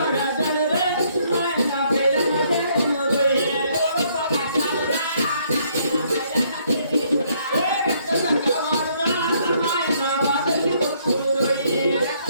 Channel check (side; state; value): both; inverted; correlation -0.68